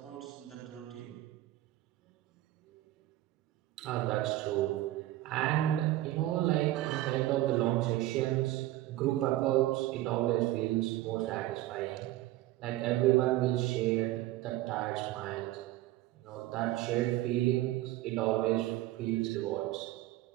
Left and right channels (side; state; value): left; quieter; 15.9 dB